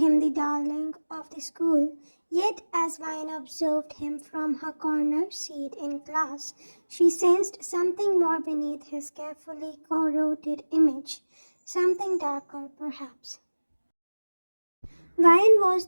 the darling of the school. Yet, as Vine observed him from her corner seat in class, she sensed something more beneath his carefully corroded image, something darker, perhaps. Vine was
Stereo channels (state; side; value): inverted; both; correlation -1.00